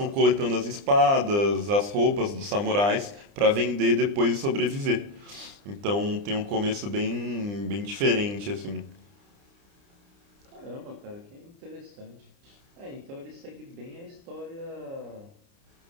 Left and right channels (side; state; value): left; late; 29 ms